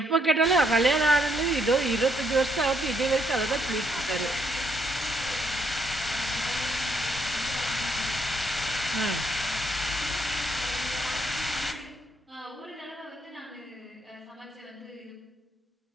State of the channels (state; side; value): normal; both; correlation 0.73